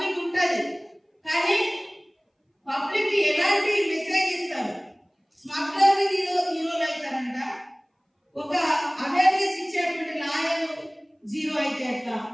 ఉంటుంది, కానీ పబ్లిక్ ఎలాంటి మెసేజ్ ఇస్తారు? స్మగ్లర్ హీరోలు అవుతారంట, ఒక అవేర్నెస్ ఇచ్చేటువంటి లాయర్ జీరో అయితే ఎట్లా?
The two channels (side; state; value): both; identical; correlation 1.00